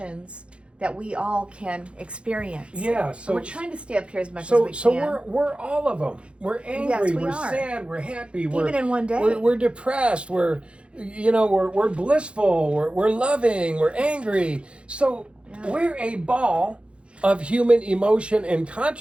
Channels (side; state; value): left; late; 0.058 ms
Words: that we all can experience. Yeah, so and we're trying to stay up here as much as we can. So we're all of them. We're angry, Yes, we we're are. sad, we're happy, Even in one day. We're depressed, we're blissful, we're loving, we're angry. So we're a ball of human emotion and